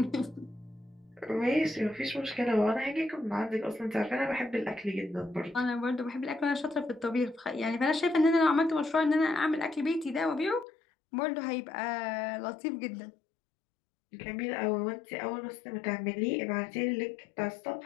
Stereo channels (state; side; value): drops out; right; at 10.7 s